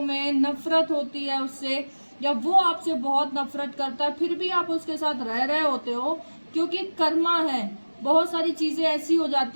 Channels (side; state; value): both; inverted; correlation -1.00